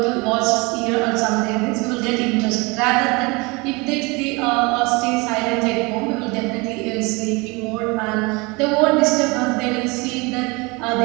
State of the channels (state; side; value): quieter; left; 26.6 dB